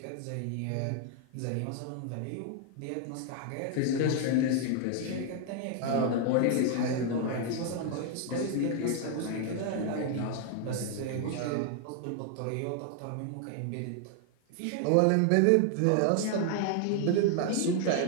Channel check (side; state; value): both; different; correlation 0.00